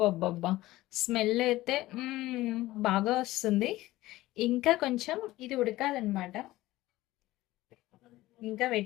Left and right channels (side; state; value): right; quieter; 17.2 dB